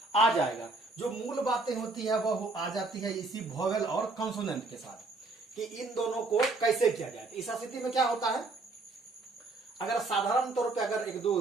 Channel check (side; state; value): left; quieter; 3.4 dB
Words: आ जाएगा। जो मूल बातें होती है वह आ जाती है इसी वोवेल और कंसोनेंट के साथ, कि इन दोनों को कैसे किया जाए। इस स्थिति में क्या होता है, अगर साधारण तौर पे अगर एक दो